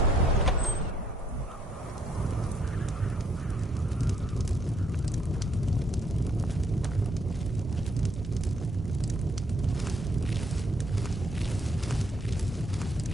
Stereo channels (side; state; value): both; normal; correlation 0.69